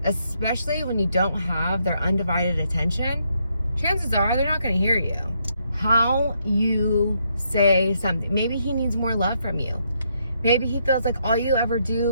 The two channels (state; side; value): inverted; both; correlation -0.76